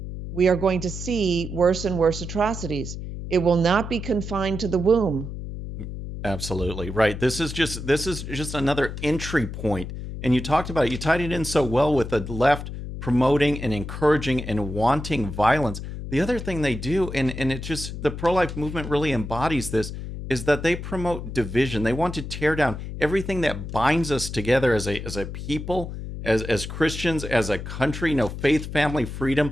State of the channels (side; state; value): left; noise; hum, 8 dB below the sound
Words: we are going to see worse and worse atrocities. It will not be confined to the womb. Absolutely. Right. This is just another entry point. And you talked about it. You tied it in so well with the left promoting and encouraging and wanting violence. The other thing they do, and it's just the pro-life movement really embodies this, is that they promote division. They want to tear down everything that binds us together as a people, as Christians, as a country, faith, family, freedom,